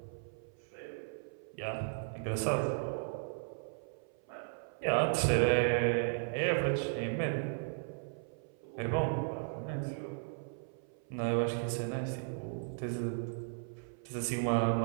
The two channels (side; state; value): left; silent; 54 dB below the other